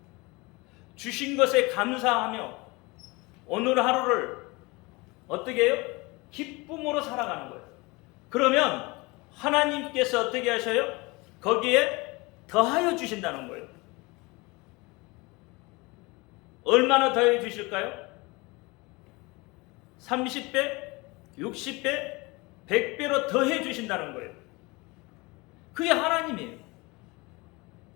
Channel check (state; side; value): quieter; right; 24.9 dB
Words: 주신 것에 감사하며 오늘 하루를 어떻게 해요? 기쁨으로 살아가는 거예요. 그러면 하나님께서 어떻게 하셔요? 거기에 더하여 주신다는 거예요. 얼마나 더해 주실까요? 30배, 60배, 100배로 더해 주신다는 거예요. 그게 하나님이에요.